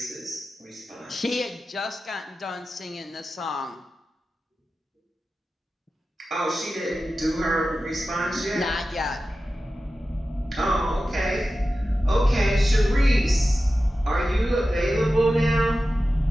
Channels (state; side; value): normal; both; correlation 0.93